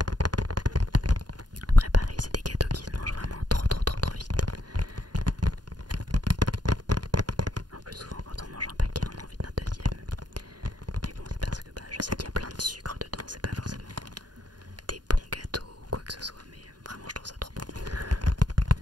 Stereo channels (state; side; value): late; left; 0.70 ms